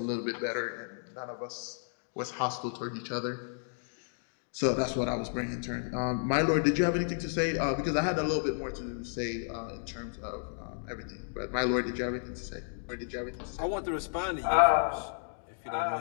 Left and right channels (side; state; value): right; silent; digital silence